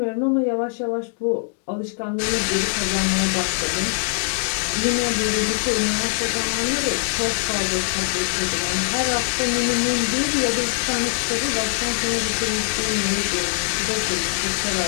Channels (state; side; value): silent; right; digital silence